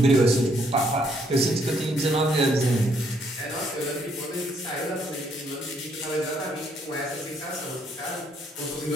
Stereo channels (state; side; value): normal; both; correlation 0.70